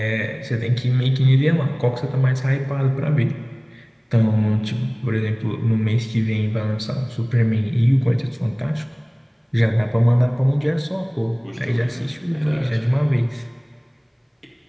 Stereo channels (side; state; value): both; identical; correlation 1.00